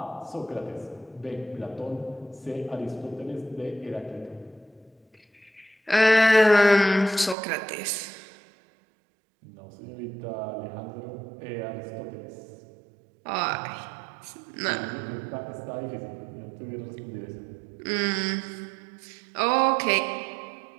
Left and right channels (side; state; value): left; drops out; at 7.4 s